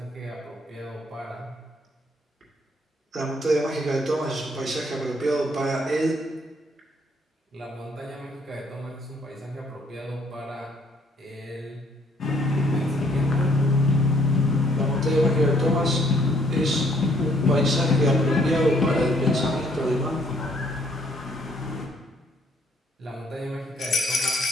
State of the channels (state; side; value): normal; both; correlation 0.65